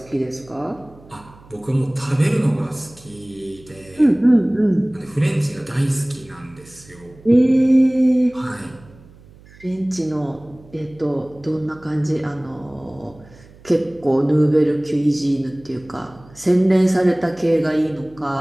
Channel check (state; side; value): noise; right; hum, 24 dB below the sound